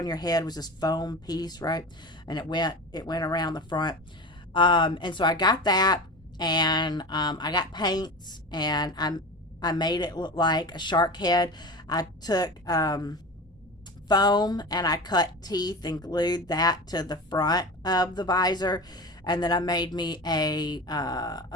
your head was this foam piece, right? And it went around the front. And so I got that, and I got paints, and I made it look like a shark head. I took foam, and I cut teeth and glued that to the front of the visor, and then I made me a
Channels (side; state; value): both; normal; correlation 0.30